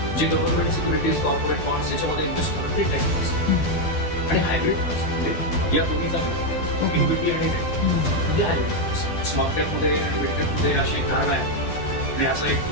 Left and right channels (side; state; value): right; late; 12 ms